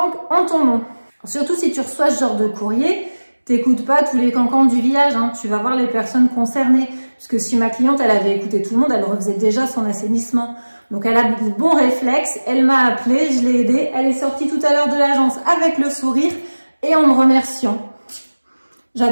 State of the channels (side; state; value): both; inverted; correlation -1.00